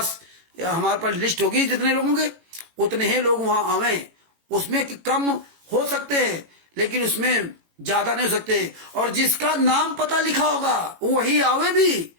लिस्ट होगी जितने लोगों के, उतने ही लोग वहां आवे। उसमें कम हो सकते हैं लेकिन उसमें ज्यादा नहीं हो सकते। और जिसका नाम पता लिखा होगा वही आवे भी।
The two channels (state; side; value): late; left; 18 ms